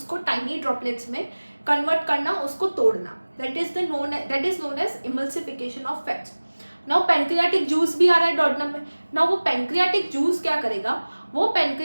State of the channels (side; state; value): both; inverted; correlation -1.00